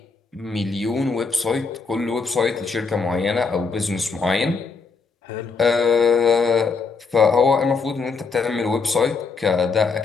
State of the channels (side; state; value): right; quieter; 4.7 dB